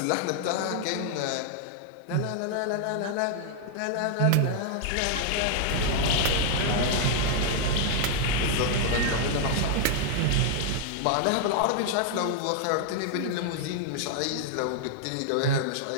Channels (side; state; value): both; different; correlation 0.00